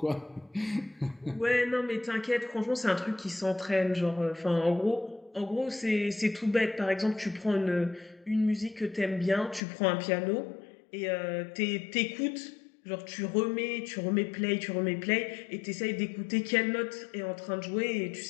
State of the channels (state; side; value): drops out; right; at 9.6 s